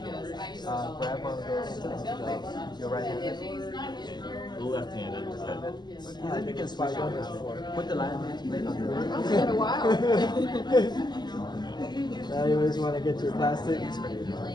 Grab one of those, your right hand. Left-handed. Yeah, you can swipe on this before. Put the line plate on the It's been a while. Now you always want to get your plastic. Make sure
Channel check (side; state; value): right; late; 0.21 ms